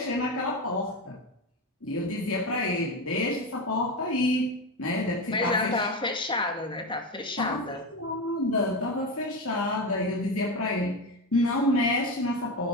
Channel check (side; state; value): both; normal; correlation 0.17